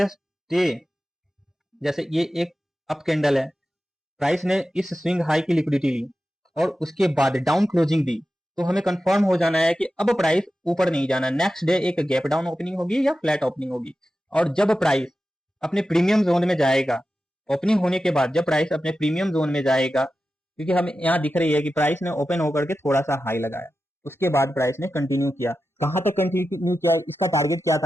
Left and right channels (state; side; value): normal; both; correlation 0.92